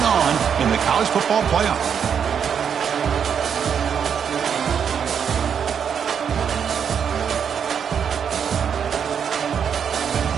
on in the college football playoff.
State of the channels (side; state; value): left; quieter; 7.5 dB